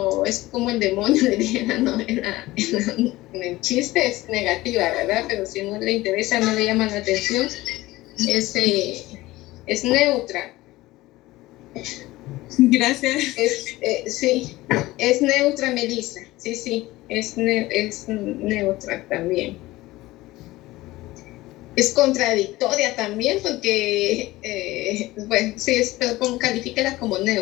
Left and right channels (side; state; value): right; quieter; 18.3 dB